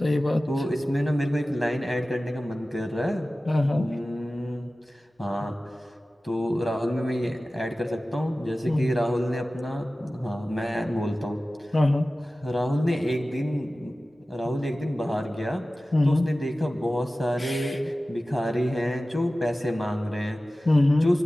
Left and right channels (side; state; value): both; normal; correlation 0.96